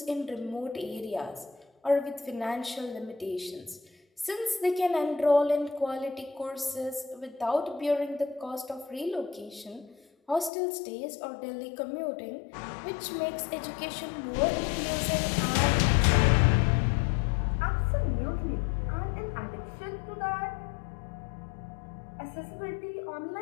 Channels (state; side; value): drops out; right; at 10.5 s